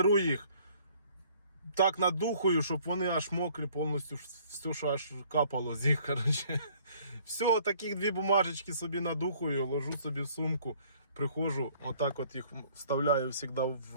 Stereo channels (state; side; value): inverted; both; correlation -0.58